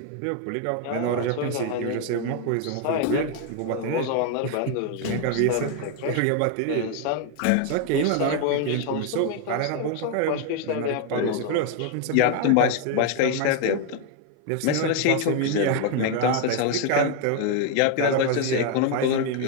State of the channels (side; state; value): both; different; correlation 0.01